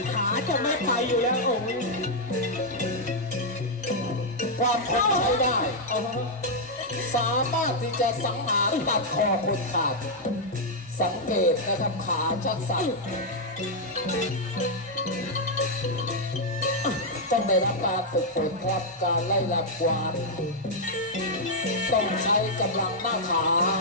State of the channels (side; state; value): both; normal; correlation -0.03